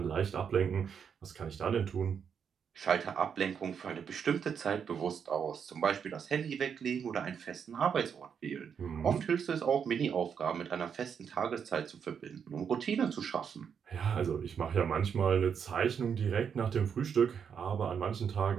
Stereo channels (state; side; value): quieter; left; 7.2 dB